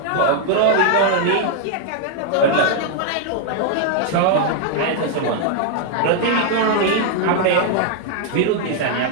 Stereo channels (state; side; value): different; both; correlation 0.00